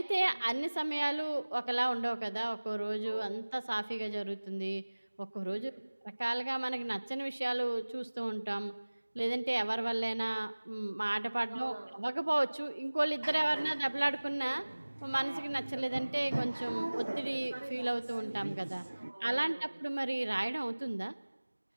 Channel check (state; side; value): inverted; both; correlation -1.00